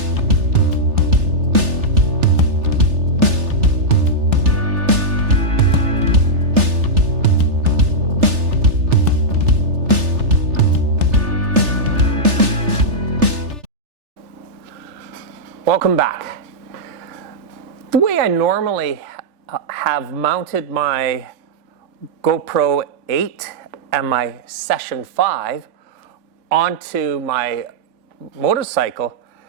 Welcome back. The way I normally have mounted my GoPro 8 and my Session 5 onto my motorcycle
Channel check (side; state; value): left; late; 3.4 ms